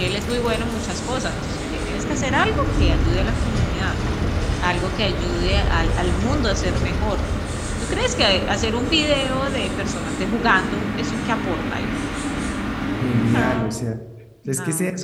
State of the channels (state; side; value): identical; both; correlation 1.00